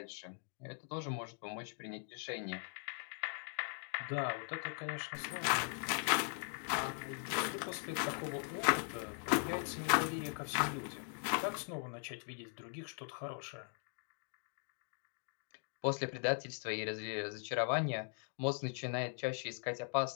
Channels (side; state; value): right; silent; 51 dB below the other